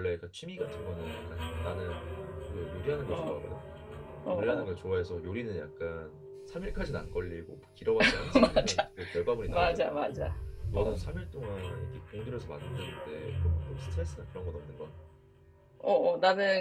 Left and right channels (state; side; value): identical; both; correlation 1.00